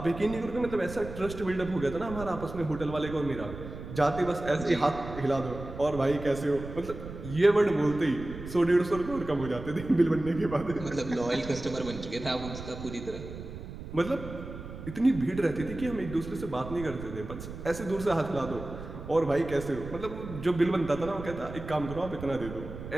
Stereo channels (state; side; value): noise; right; rumble, 11 dB below the sound